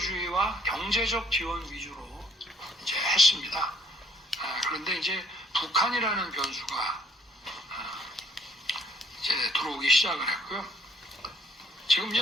경제적 지원 위주로 이제 했습니다. 그런데 이제 북한이라는 변수가 이제 들어오기 시작을 했고요. 지금 이제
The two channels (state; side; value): normal; both; correlation 0.63